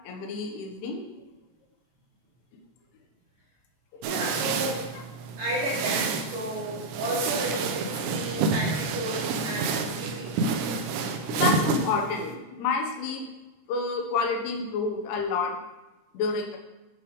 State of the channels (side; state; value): both; normal; correlation -0.03